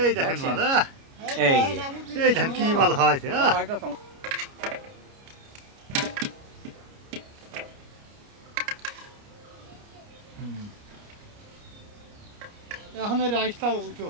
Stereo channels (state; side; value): late; left; 29 ms